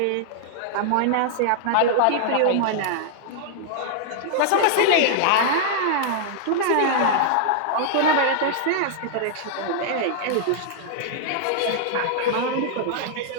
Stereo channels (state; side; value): different; both; correlation -0.01